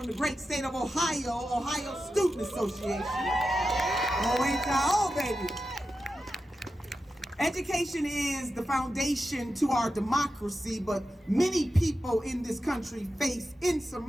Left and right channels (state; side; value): normal; both; correlation 0.91